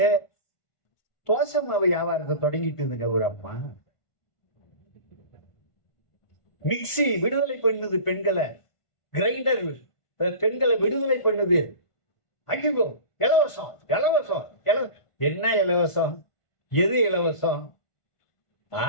தோசை மாவு வியாபாரத்தை தொடங்கிட்டு இருந்துங்க ஒரு அம்மா. மிக்சி விடுதலை பண்ணுது பெண்களை, கிரைண்டர் பெண்களை விடுதலை பண்ணுது. ஐயோ இலவசம் இலவசம் என்ன இலவசம்? எது இலவசம்?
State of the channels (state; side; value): late; right; 1.5 ms